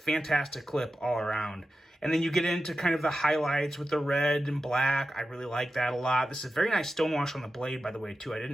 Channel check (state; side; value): normal; both; correlation 0.92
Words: clip all around. And then you get into kind of the highlights with the red and black. I really like that a lot. This is very nice stonewash on the blade, by the way, too. I